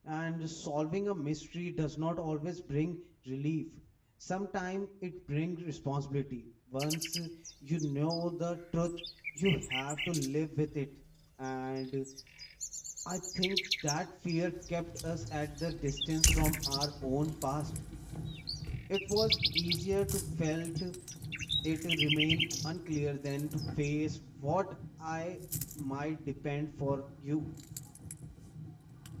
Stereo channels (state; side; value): identical; both; correlation 1.00